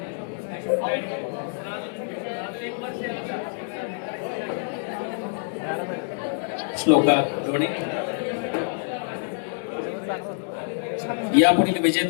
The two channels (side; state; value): right; silent; 61 dB below the other